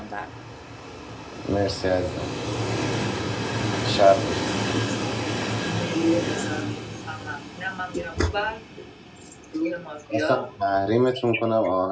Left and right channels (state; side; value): identical; both; correlation 1.00